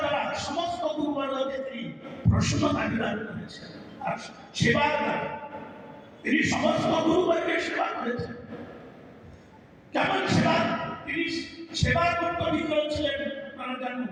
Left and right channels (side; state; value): both; identical; correlation 1.00